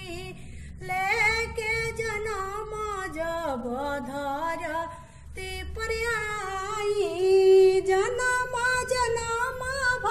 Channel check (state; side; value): identical; both; correlation 1.00